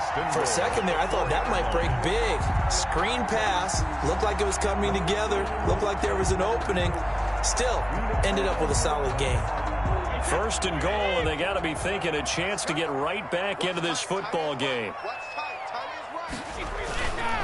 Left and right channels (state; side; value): identical; both; correlation 1.00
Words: For a second there, I thought that might break big. Screen pass. Looked like it was coming together. Looked like there was an opening. Still, ended up with a solid game. 1st and goal, and they got to be thinking a chance to get right back into this football game.